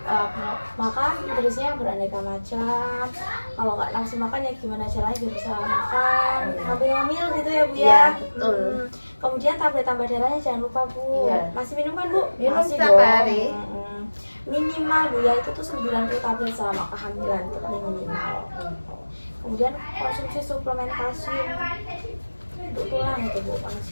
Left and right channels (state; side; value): inverted; both; correlation -1.00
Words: makan nutrisinya yang beraneka macam. Kalau nggak langsung makan ya gimana caranya biar bisa makan, ngambil gitu ya Bu ya. Iya, betul. Kemudian tablet tambah darahnya jangan lupa Bu. Iya. Masih minum kan Bu? Minum Masih setiap dong. hari. Minimal Bu ya, itu tuh 90 tablet selama kehamilan, itu paling minimal. Kemudian konsumsi suplemen kalsium untuk tulang itu Bu,